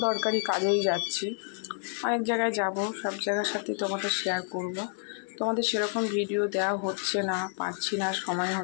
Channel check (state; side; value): silent; right; 58 dB below the other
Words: দরকারি কাজেই যাচ্ছি, অনেক জায়গায় যাব, সব জায়গার সাথেই তোমাদের শেয়ার করব। তোমাদের সেরকম ভিডিও দেওয়া হচ্ছে না, পারছি না, সময়